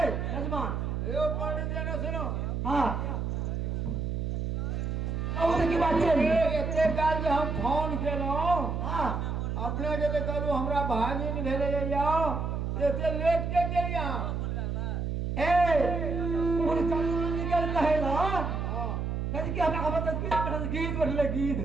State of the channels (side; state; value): right; noise; hum, 2 dB below the sound